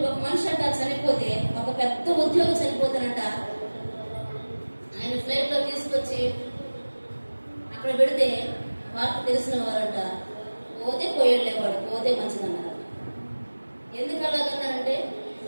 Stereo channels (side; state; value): both; inverted; correlation -1.00